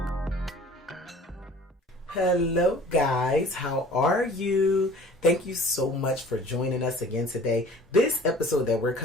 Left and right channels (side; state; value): both; normal; correlation 0.48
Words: Hello guys, how are you? Thank you so much for joining us again today. This episode that we're